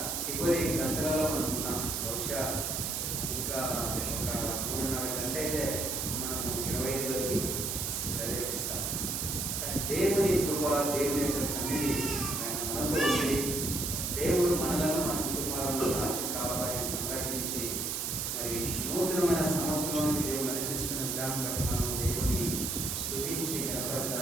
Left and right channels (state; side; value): noise; right; hiss, 1 dB below the sound